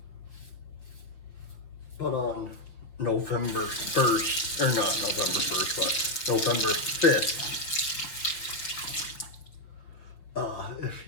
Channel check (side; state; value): right; late; 6.0 ms